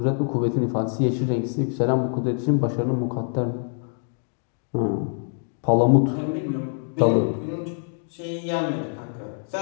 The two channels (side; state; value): right; silent; 62 dB below the other